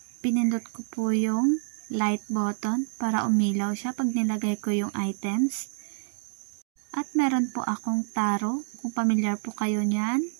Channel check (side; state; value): left; silent; digital silence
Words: Pinindot ko po yung light button para umilaw siya pag nilagay ko yung items. At meron po akong taro, kung pamilyar po kayo niyan.